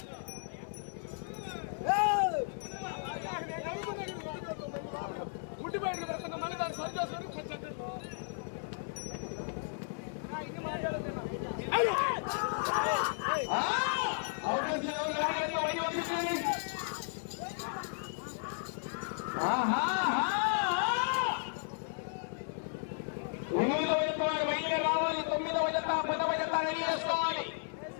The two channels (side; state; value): right; silent; 55 dB below the other